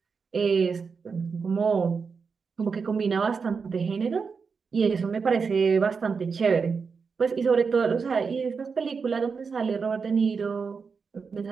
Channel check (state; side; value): quieter; left; 5.4 dB